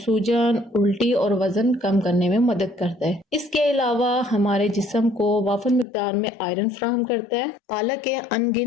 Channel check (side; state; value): right; drops out; at 5.9 s